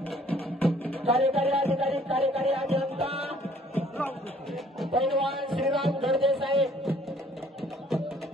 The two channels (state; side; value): normal; both; correlation 0.58